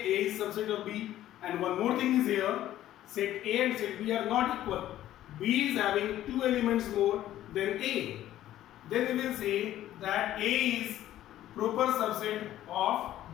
is subset of B. And one more thing is here, set A and set B are not equal. B is having two elements more than A. Then we will say that A is proper subset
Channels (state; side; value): quieter; right; 13.1 dB